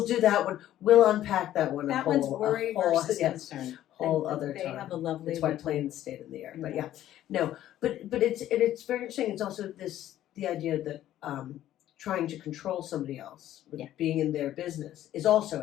do that one. We'll unpack that one. That one's worry versus concern. Whole other They time. have a lovely. It's why planes stayed in the air. But yeah, no. But it's very interesting. It's also the idea that trying to control somebody else, with being in their business, is also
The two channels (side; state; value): right; quieter; 12.7 dB